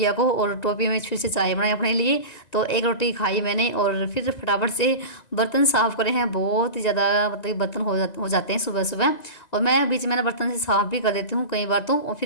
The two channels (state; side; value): late; right; 1.9 ms